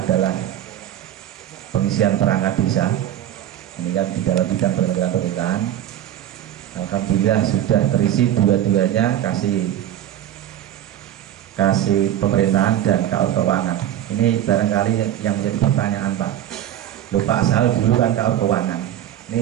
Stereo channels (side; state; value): left; quieter; 11.6 dB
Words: pengisian perangkat desa. Ini kan di dalam bidang penyelenggaraan pemerintahan. Alhamdulillah sudah terisi dua-duanya, kasih pemerintahan dan keuangan. Ini barangkali yang menjadi pertanyaan Pak. Loh Pak Sal dulu kan KAUR Keuangan.